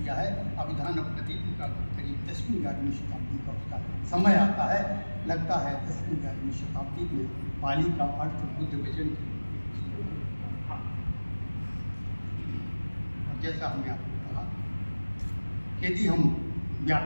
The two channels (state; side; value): inverted; both; correlation -1.00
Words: है। अभिधान प्रदीप का करीब 10वीं 11वीं शताब्दी का उसका समय आता है, लगता है 10वीं 11वीं शताब्दी में पाली का अर्थ बुद्ध वचन। और जैसा हमने आपको कहा, यदि हम